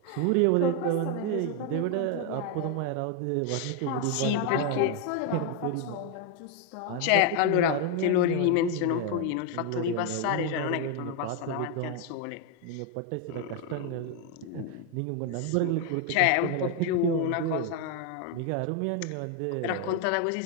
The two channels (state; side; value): different; both; correlation 0.01